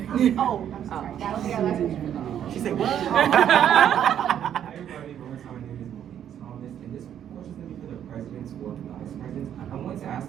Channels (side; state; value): left; quieter; 9.8 dB